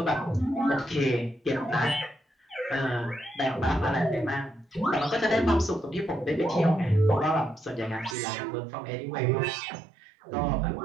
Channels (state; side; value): drops out; left; at 8.2 s